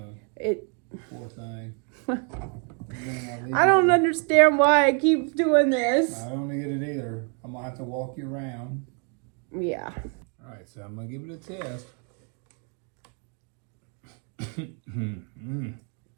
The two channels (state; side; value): quieter; left; 39.9 dB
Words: It. Poor thing. I don't understand why I keep doing this. I don't get it either. I'm gonna have to walk you around. Yeah. All right, so I'm gonna give it a test.